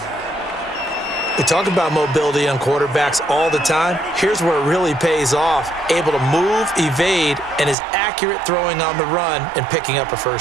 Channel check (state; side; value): drops out; left; at 7.8 s